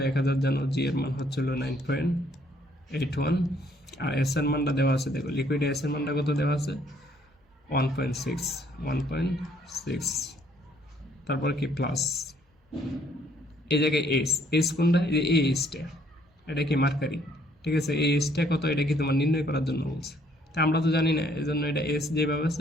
1000 জানো, জি এর মান হচ্ছিল 9.81, আর এস এর মানটা দেওয়া আছে, দেখো লিকুইড এস এর মানটা কত দেওয়া আছে 1.6। তারপর কি প্লাস এই জায়গায় এস কোনটা, এই যে এই এসটা, এটা কি মার্কারি, ঠিক আছে, এই এসটা কত এটা কি তোমার নির্ণয় করার জন্য বলছে, তা আমরা তো জানি না, এই জন্য এটা এস যেভাবে আছে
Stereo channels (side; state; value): both; normal; correlation 0.65